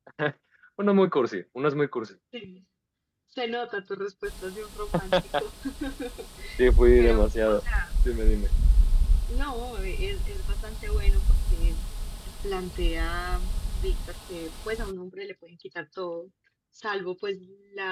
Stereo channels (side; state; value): both; identical; correlation 1.00